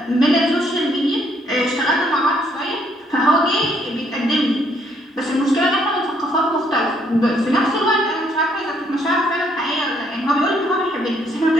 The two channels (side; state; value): both; normal; correlation 0.69